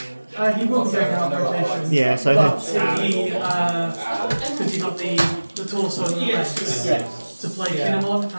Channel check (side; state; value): both; inverted; correlation -1.00